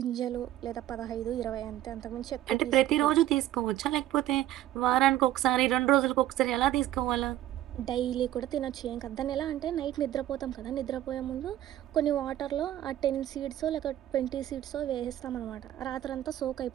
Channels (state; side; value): quieter; left; 13.2 dB